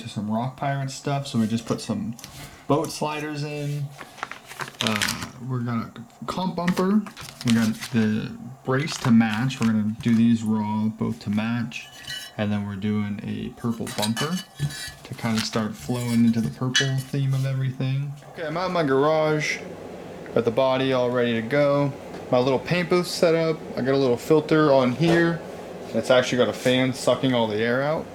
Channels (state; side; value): identical; both; correlation 1.00